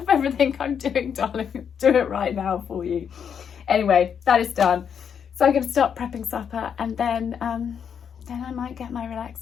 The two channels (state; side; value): quieter; right; 7.6 dB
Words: everything I'm doing, darling. Do it right now for you. Anyway, that is done. So I'm going to start prepping supper, and then I might get my